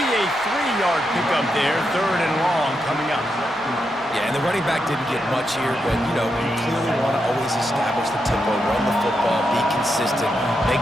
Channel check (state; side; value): normal; both; correlation 0.84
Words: a 3-yard pickup there, third and long coming up. Yeah, and the running back didn't get much here, but, you clearly want to always establish the tempo, run the football, be consistent, make